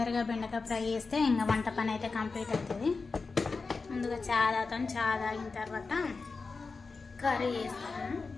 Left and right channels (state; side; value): quieter; right; 4.3 dB